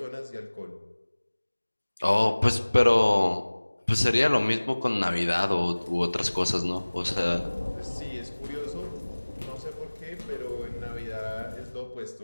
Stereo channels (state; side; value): inverted; both; correlation -1.00